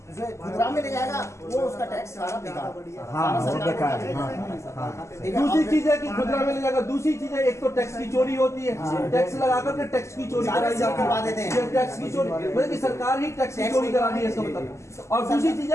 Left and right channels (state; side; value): late; right; 0.13 ms